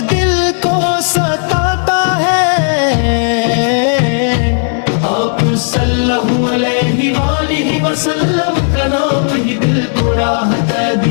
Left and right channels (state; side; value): silent; right; digital silence